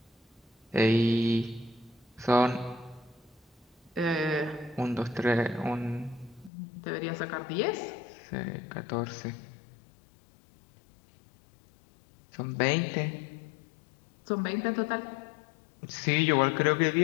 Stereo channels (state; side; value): drops out; right; at 6.5 s